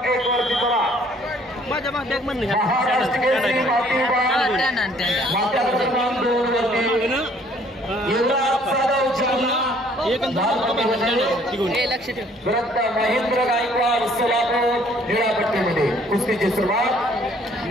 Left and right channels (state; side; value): normal; both; correlation 0.60